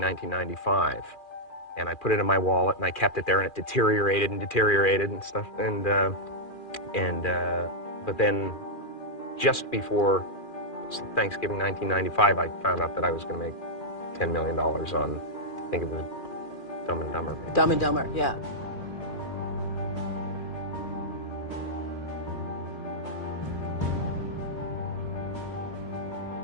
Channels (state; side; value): late; right; 2.4 ms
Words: and I put it in my wallet, and I kept it there, and it deteriorated and stuff, but then just before Thanksgiving 1995, I found out that I was going to make $10 million on, I think it was Dumb and Dumber, maybe. Dumb and Dumber, yeah.